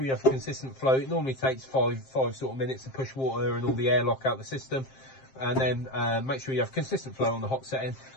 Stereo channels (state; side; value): late; right; 7.5 ms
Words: you have a consistent flow. It normally takes five sort of minutes to push water and all the airlock out the system. and then make sure you have consistent flow on the hot setting.